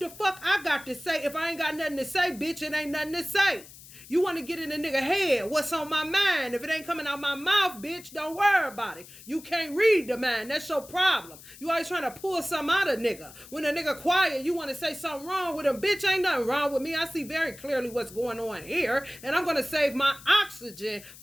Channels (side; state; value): left; noise; hiss, 19 dB below the sound